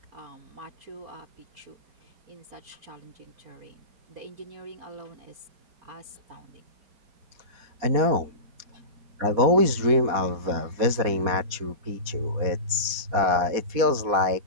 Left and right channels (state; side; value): late; left; 4.2 ms